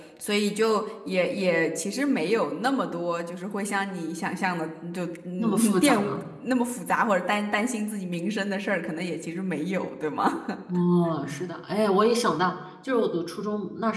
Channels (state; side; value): identical; both; correlation 1.00